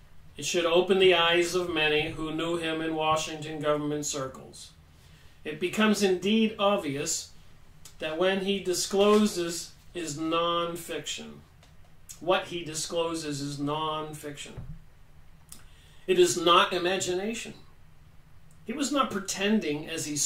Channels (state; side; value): identical; both; correlation 1.00